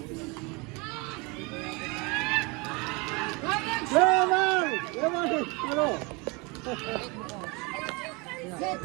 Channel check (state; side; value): quieter; left; 27.9 dB